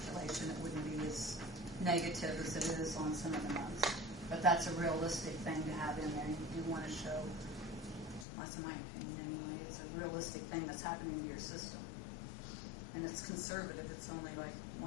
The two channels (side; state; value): right; drops out; at 8.2 s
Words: it wouldn't be as negative as it is on some of the months. But that's a realistic thing to have in there. You want to show, that's in my opinion anyway, it's a realistic thing that's happening to your system. And it's conservative. It's only like